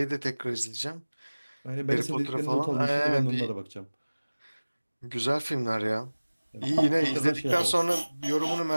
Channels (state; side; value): inverted; both; correlation -1.00